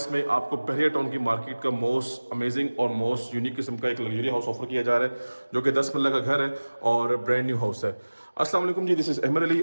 में आपको बहरिया टाउन की मार्केट का मोस्ट अमेजिंग और मोस्ट यूनिक किस्म का एक लग्जरी हाउस ऑफर किया जा रहा है, जो कि 10 मरला का घर है और ब्रांड न्यू हाउस है। अस्सलाम वालेकुम जी, दिस इज अहमद अली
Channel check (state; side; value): inverted; both; correlation -1.00